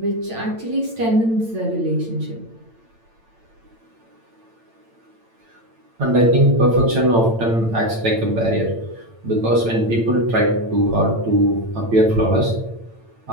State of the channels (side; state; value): left; late; 8.9 ms